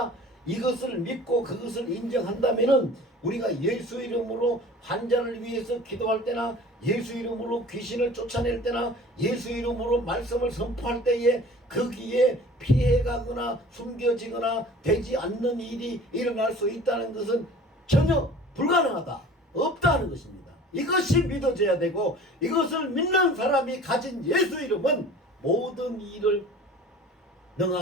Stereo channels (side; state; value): both; normal; correlation 0.44